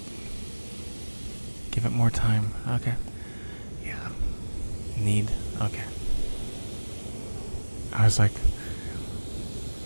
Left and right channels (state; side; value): inverted; both; correlation -1.00